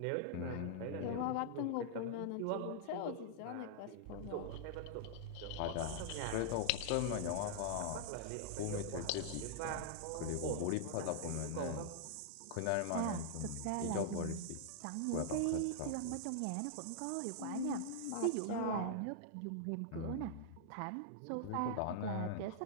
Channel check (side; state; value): both; different; correlation -0.01